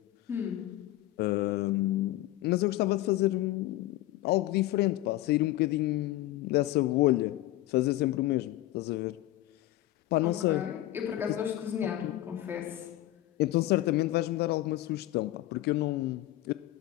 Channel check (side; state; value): right; quieter; 15.8 dB